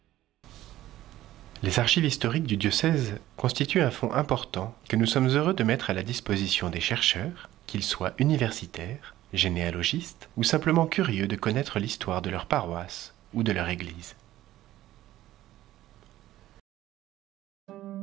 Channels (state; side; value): quieter; left; 14.5 dB